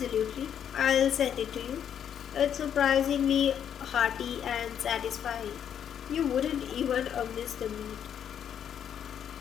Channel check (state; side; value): quieter; right; 8.9 dB